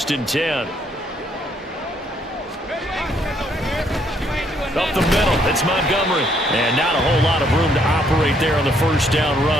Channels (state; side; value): normal; both; correlation 0.69